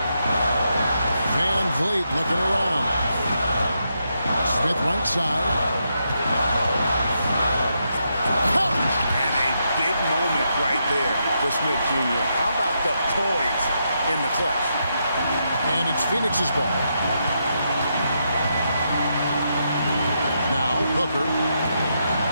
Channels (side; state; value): both; inverted; correlation -0.82